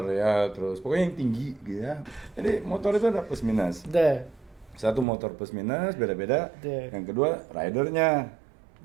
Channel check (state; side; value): drops out; left; at 5.1 s